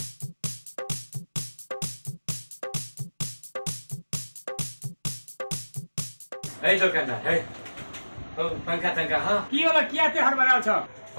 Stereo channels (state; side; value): inverted; both; correlation -1.00